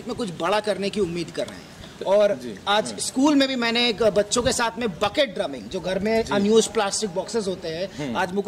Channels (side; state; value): both; identical; correlation 1.00